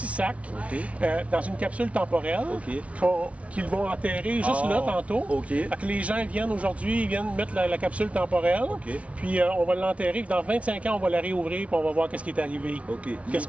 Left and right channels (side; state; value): left; late; 0.064 ms